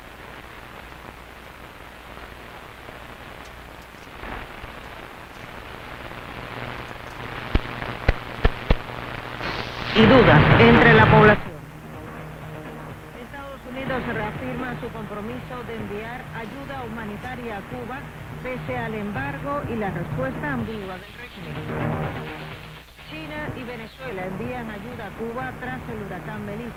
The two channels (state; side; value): identical; both; correlation 1.00